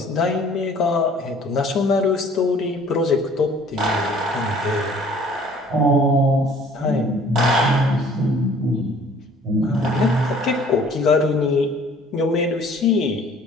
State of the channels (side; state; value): both; normal; correlation 0.53